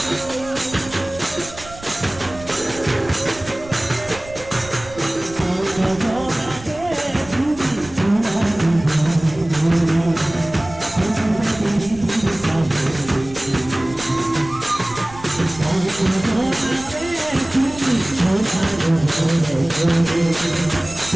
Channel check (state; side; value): noise; right; rumble, 17 dB below the sound